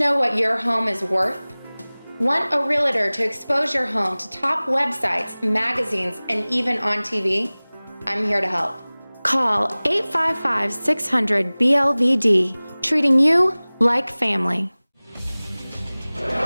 what your home is worth? Want a realtor to expose your home to top websites, magazines, and even on TV? I'm here to help. Call 855-600-BLVD, treating you like family.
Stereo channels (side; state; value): both; inverted; correlation -1.00